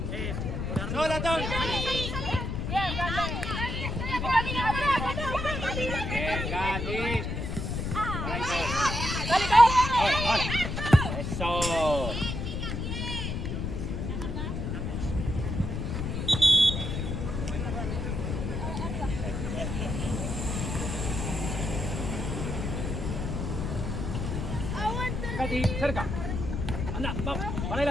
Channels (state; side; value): noise; left; rumble, 3 dB below the sound